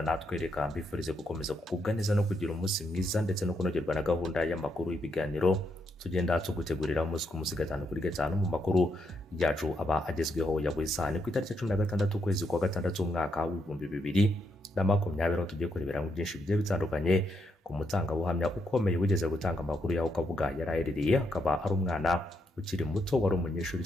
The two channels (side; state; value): both; normal; correlation 0.78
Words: natwe, reka mbifurize gukomeza kugubwa neza no kugira umunsi mwiza ndetse no kunogerwa na gahunda y'amakuru y'ibiganiro tugenda tugutegurira umunsi ku munsi gatanu kuri gatanu mu makuru yacu aba agezweho ya buri saa. Ni ku itariki 16 ukwezi kwa gatandatu umwaka w'ibihumbi 2020 tugiye kurebera mu byinshi bigiye bitandukanye ku mutangabuhamya ukomeye wigeze gutanga amakuru yaho Kabuga yaraherereye, akaba ari umwana ukiri muto wari umunyeshuri